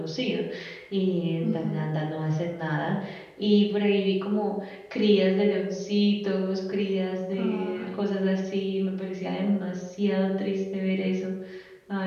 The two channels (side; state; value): both; identical; correlation 1.00